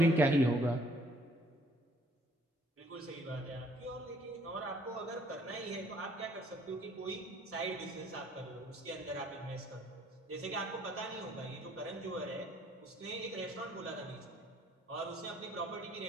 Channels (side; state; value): both; normal; correlation 0.62